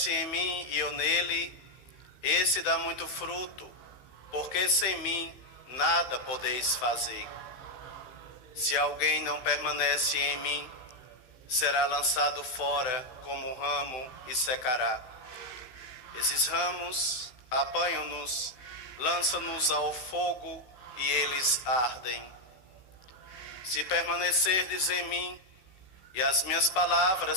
em mim e eu nele, esse dá muito fruto, porque sem mim nada podeis fazer. Se alguém não permanece em mim, será lançado fora como ramo e secará. Esses ramos apanham-nos, lançam-nos ao fogo e eles ardem. Se permanecerdes em mim e as minhas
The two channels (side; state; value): right; late; 16 ms